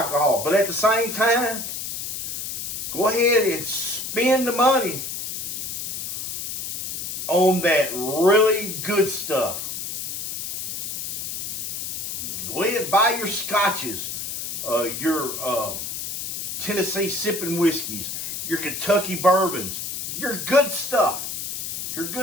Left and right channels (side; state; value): left; noise; hiss, 5 dB below the sound